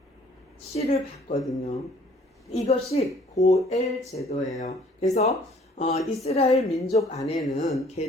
씨를 받거든요. 이것이 고엘 제도예요. 그래서 이스라엘 민족 안에는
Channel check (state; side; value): normal; both; correlation 0.56